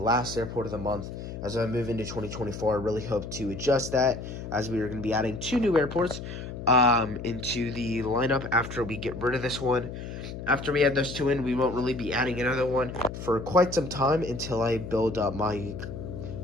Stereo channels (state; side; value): noise; left; hum, 9 dB below the sound